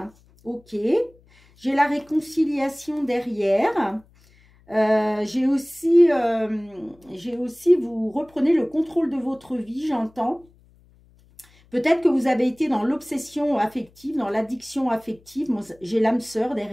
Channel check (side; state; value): left; noise; hum, 30 dB below the sound